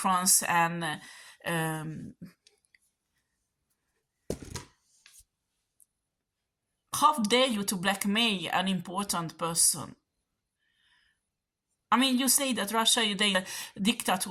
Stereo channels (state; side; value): identical; both; correlation 1.00